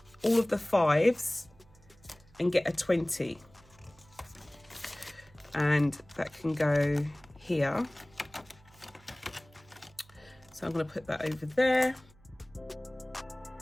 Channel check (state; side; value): noise; right; hum, 27 dB below the sound